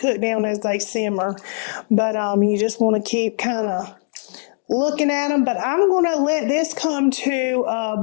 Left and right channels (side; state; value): right; silent; 65 dB below the other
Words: cook down as they simmer. But you just want to keep kind of looking at them, but I'm going to let this come to a